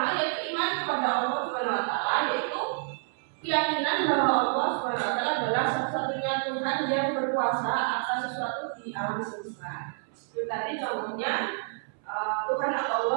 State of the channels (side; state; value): left; silent; 59 dB below the other